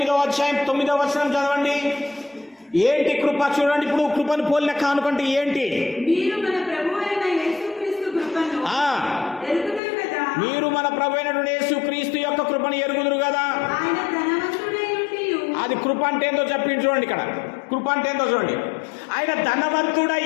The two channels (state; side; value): drops out; right; at 9.8 s